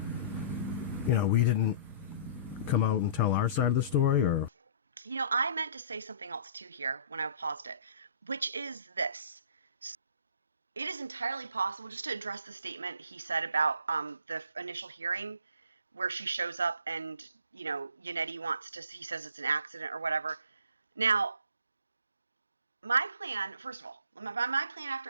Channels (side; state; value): both; inverted; correlation -0.48